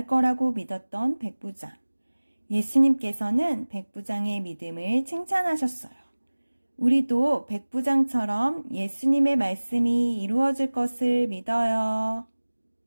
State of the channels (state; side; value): inverted; both; correlation -1.00